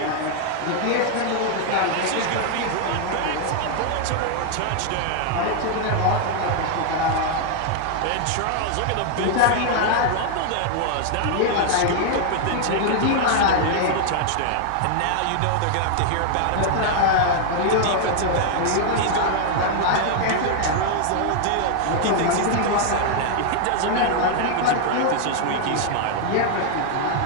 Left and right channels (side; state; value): both; different; correlation 0.00